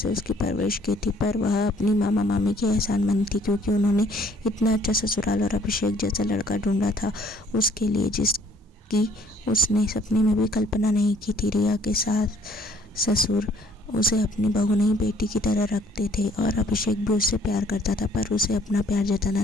उसकी परवरिश की थी, पर वह अपनी मामा मामी की एहसानमंद थी क्योंकि उन्होंने इतना अच्छा ससुराल और अभिषेक जैसा लड़का ढूंढा था उसके लिए, जिसकी उसने सपने में भी कल्पना नहीं की थी। रिया के सास ससुर उसे अपनी बहू नहीं बेटी की तरह रखते थे और अभिषेक भी उससे प्यार करता था, पर उसे अपना प्यार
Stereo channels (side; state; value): both; normal; correlation 0.60